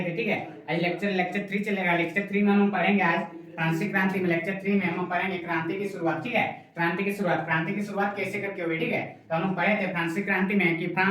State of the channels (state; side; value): identical; both; correlation 1.00